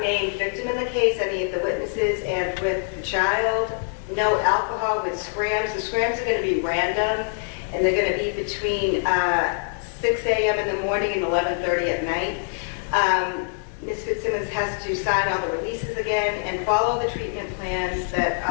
named victim in the case, any of the witnesses, and with the child. No alcohol with SCRAMs. The SCRAMs are going to be random, and they're going to be between 6 a.m. in the morning and 11:30 at night. Ms. Fitzsimmons has to sign all the releases again and follow the treatment plans that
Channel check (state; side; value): silent; right; 62 dB below the other